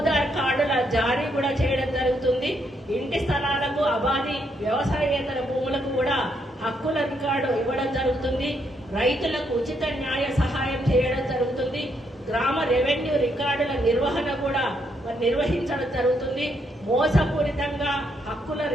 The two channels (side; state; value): both; normal; correlation 0.75